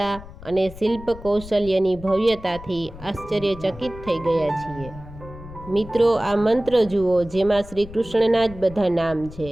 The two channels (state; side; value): noise; left; rumble, 16 dB below the sound